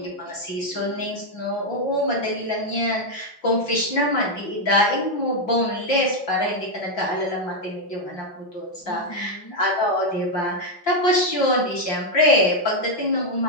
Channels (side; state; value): right; late; 5.8 ms